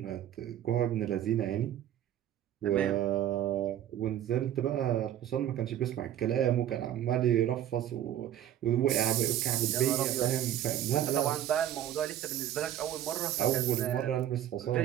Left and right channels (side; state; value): left; quieter; 11.4 dB